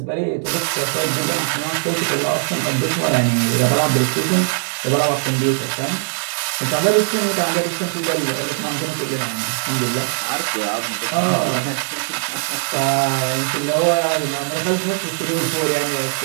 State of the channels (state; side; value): silent; left; 66 dB below the other